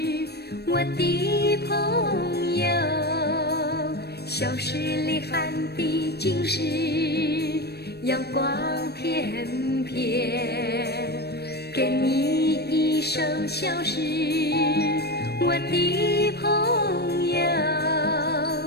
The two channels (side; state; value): right; late; 0.47 ms